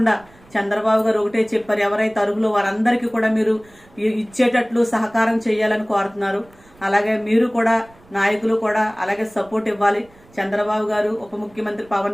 చంద్రబాబు గారు ఒకటే చెప్పారు, ఎవరైతే అర్హులు వారందరికీ కూడా మీరు ఇచ్చేటట్లు సహకారం చేయాలని కోరుతున్నారు. అలాగే మీరు కూడా నాయకులు కూడా అలాగే సపోర్ట్ ఇవ్వాలి. చంద్రబాబు గారు, ఉప ముఖ్యమంత్రి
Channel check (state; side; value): noise; right; rumble, 27 dB below the sound